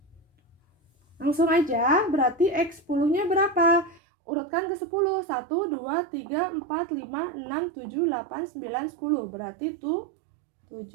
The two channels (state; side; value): drops out; left; at 4.0 s